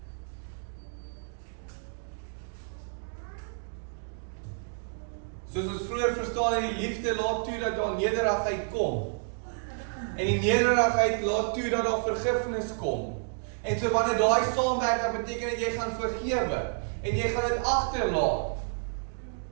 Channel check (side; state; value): left; silent; digital silence